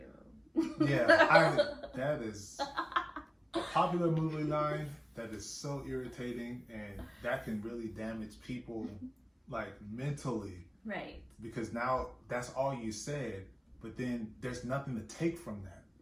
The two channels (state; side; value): identical; both; correlation 1.00